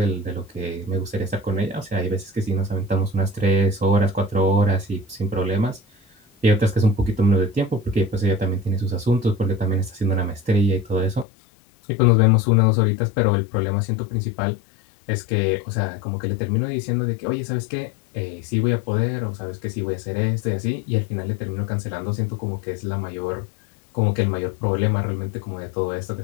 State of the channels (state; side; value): drops out; right; at 11.2 s